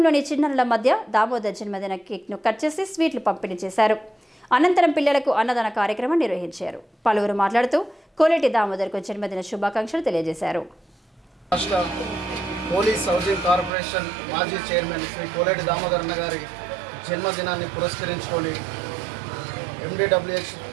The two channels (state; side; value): drops out; left; at 13.7 s